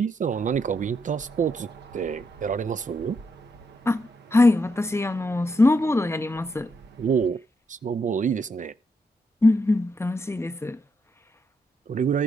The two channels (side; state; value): both; normal; correlation 0.80